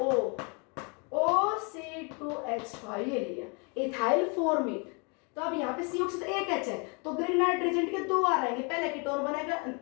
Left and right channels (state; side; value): quieter; right; 33.9 dB